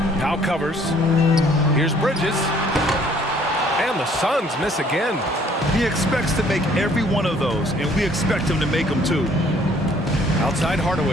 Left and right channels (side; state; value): both; normal; correlation 0.60